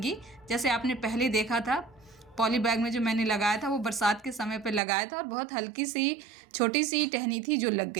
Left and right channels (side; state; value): left; drops out; at 4.8 s